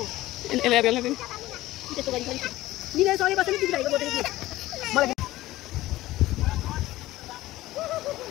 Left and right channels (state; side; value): quieter; right; 16.7 dB